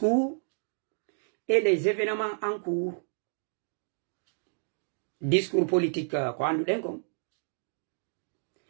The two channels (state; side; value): silent; left; digital silence